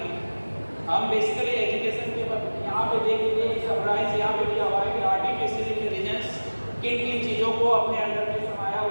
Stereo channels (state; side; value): inverted; both; correlation -1.00